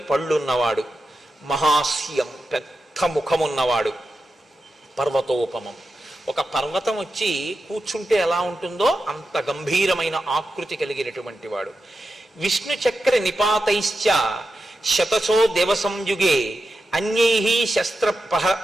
పళ్ళున్నవాడు. మహాస్యం, పెద్ద ముఖమున్నవాడు. పర్వతోపమం, ఒక పర్వతం వచ్చి కూర్చుంటే ఎలా ఉంటుందో అంత గంభీరమైన ఆకృతి కలిగినటువంటి వాడు. విష్ణు చక్ర నిపాతైశ్చ శతసో దేవసంయుగే అన్యై శస్త్ర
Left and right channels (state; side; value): normal; both; correlation 0.90